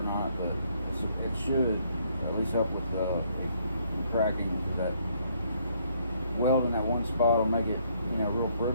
not, but it should at least help with the cracking. That weld in that one spot will make it, real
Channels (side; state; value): both; inverted; correlation -0.68